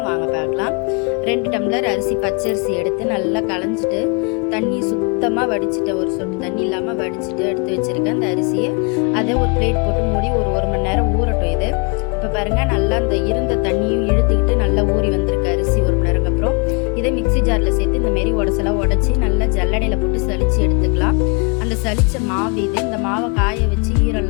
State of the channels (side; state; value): right; quieter; 33.0 dB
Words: வாங்க பார்க்கலாம். 2 டம்ளர் அரிசி, பச்சரிசி எடுத்து நல்லா களைஞ்சிட்டு தண்ணி சுத்தமாக வடிச்சிட்டு, ஒரு சொட்டு தண்ணி இல்லாமல் வடிச்சிட்டு எடுத்து வச்சுருக்கேன். அந்த அரிசியை அதை ஒரு பிளேட் போட்டு மூடி ஒரு மணி நேரம் ஊறட்டும். இது இப்போ பாருங்கள், நல்லா அந்த இருந்த தண்ணியும் இழுத்துக்கிட்டு நல்லா ஊறி வந்திருக்கு அரிசி. 1 மணி நேரம் அப்புறம் இதை மிக்சி ஜாரில் சேர்த்து இந்தமாரி உடச்செல்லாம் உடச்சி நல்லா ஜல்லடையில் போட்டு சளிச்சு எடுத்துக்கலாம். அந்த சளிச்ச மாவு இது. இந்த மாவை காய வச்சு ஈரம்